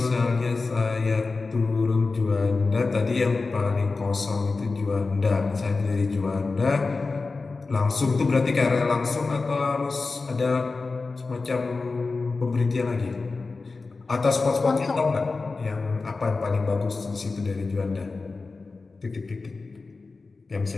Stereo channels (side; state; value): right; quieter; 3.9 dB